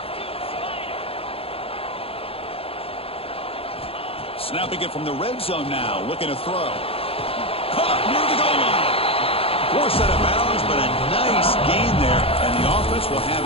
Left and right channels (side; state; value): right; late; 0.27 ms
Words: Snapping it from the red zone now, looking to throw. Caught near the goal line. Forced out of bounds, but a nice gain there, and the offense will have